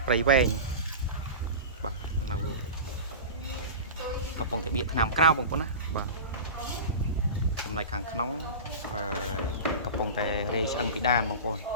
ព្រៃវែងបាទនៅកំពង់តាបៀកឆ្នាំក្រៅបងប្អូនណាបាទចំណែកខាងក្នុងកំពុងតែរេឆ្អឹងពីដានបងប្អូន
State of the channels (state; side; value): inverted; both; correlation -0.31